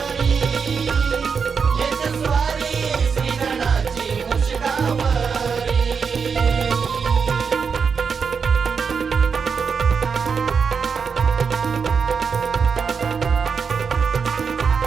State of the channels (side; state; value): left; quieter; 5.9 dB